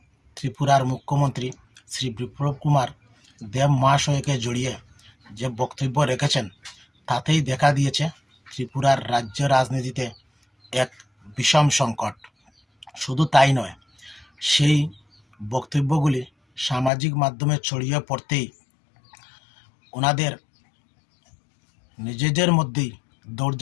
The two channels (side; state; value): right; drops out; at 16.9 s